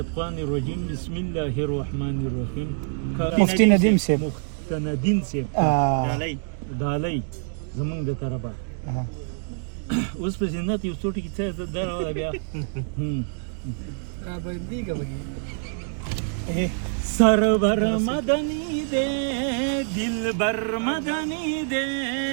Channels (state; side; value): silent; left; digital silence